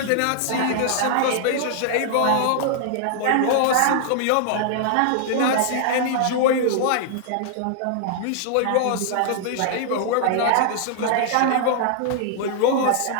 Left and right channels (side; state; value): both; different; correlation -0.01